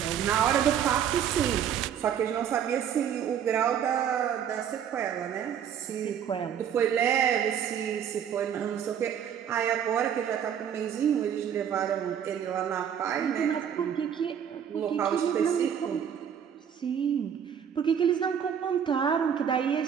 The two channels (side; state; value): left; quieter; 8.6 dB